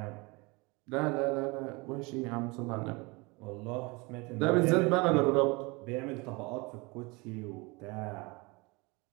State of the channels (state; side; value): quieter; left; 26.5 dB